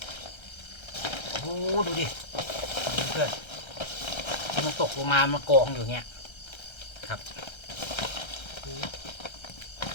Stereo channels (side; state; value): right; late; 1.3 ms